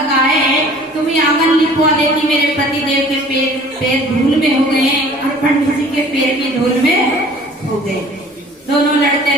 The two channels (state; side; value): normal; both; correlation 0.49